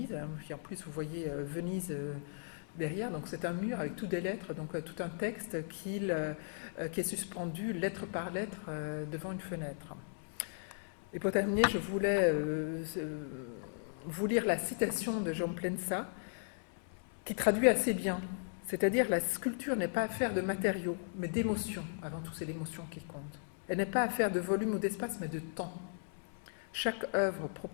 Puis en plus, vous voyez Venise derrière, donc c'est un mur avec toutes des lettres, donc tout un texte qui est suspendu lettre par lettre devant une fenêtre. Et pour terminer, je voulais vous lire la citation de Jaume Plensa, qui traduit assez bien. C'est-à-dire, la sculpture n'est pas affaire de matériaux, mais d'émotions. Avant tout, c'est l'émotion qui compte. Elle n'est pas affaire de volume ou d'espace, mais de temps. Chaque œuvre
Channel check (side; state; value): right; silent; 53 dB below the other